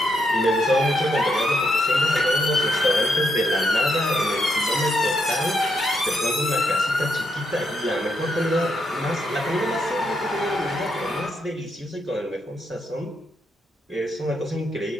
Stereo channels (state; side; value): normal; both; correlation 0.79